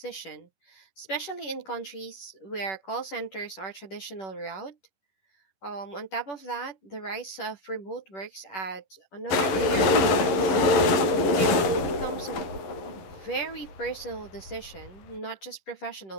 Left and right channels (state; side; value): late; right; 11 ms